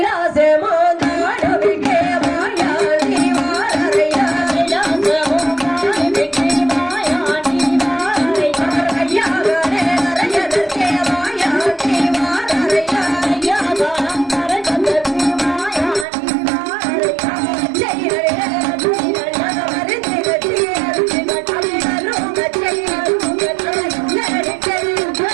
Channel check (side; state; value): left; drops out; at 16.1 s